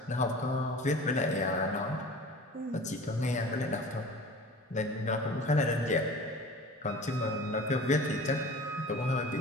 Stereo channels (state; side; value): normal; both; correlation 0.40